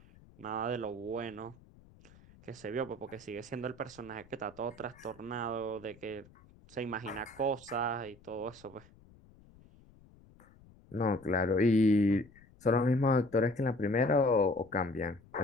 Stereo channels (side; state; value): left; noise; rumble, 25 dB below the sound